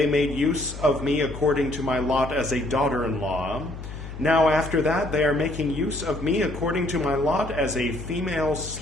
made use of me according to my lot as a daughter-in-law. Now after that they are making use of me according to my lot as a female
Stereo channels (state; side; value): noise; left; hum, 11 dB below the sound